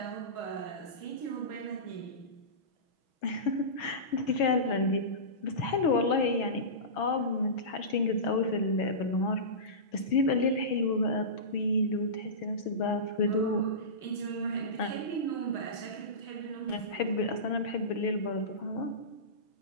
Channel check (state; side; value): late; right; 6.3 ms